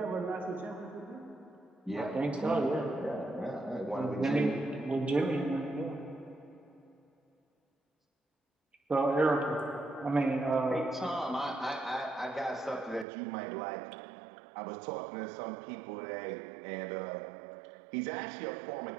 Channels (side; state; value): left; drops out; at 13.1 s